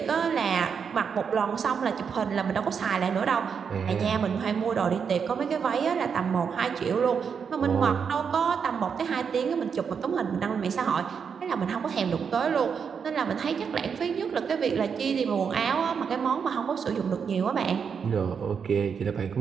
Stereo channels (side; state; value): left; quieter; 6.5 dB